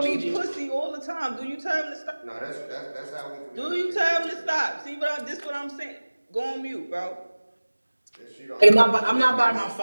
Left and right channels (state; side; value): inverted; both; correlation -1.00